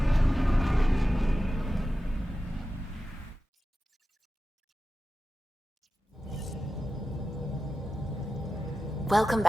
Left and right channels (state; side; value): normal; both; correlation 0.93